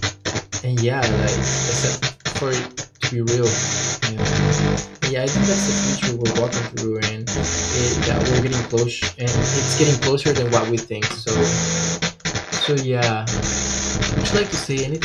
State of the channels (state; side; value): identical; both; correlation 1.00